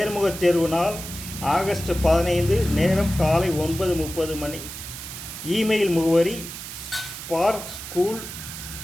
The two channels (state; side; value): noise; right; hiss, 10 dB below the sound